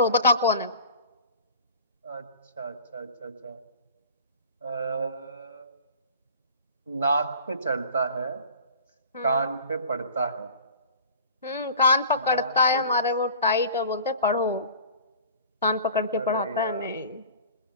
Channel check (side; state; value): both; inverted; correlation -0.42